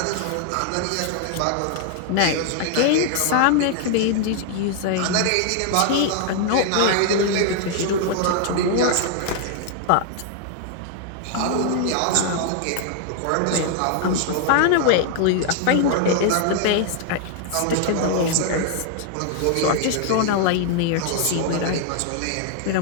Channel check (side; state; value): both; different; correlation 0.00